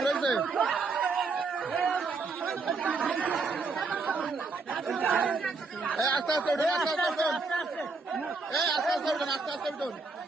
রয়েছে। আস্তে আস্তে উঠুন, আস্তে আস্তে উঠুন, আস্তে আস্তে উঠুন, আস্তে আস্তে উঠুন।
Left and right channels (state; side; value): quieter; left; 4.1 dB